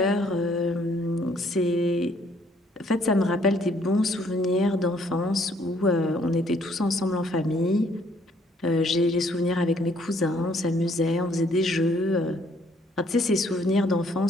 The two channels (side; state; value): both; normal; correlation 0.65